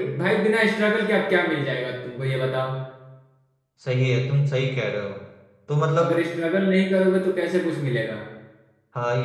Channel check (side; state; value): both; identical; correlation 1.00